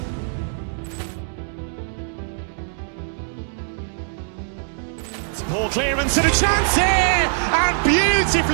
Poor clearance and a chance here, and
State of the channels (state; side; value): silent; left; 64 dB below the other